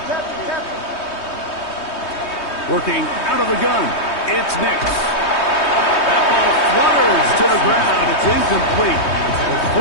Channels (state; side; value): late; right; 3.2 ms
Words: Working out of the gun, it's Nix. That ball flutters to the ground. It's incomplete.